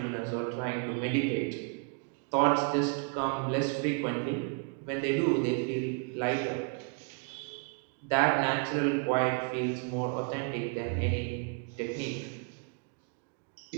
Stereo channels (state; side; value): quieter; left; 38.0 dB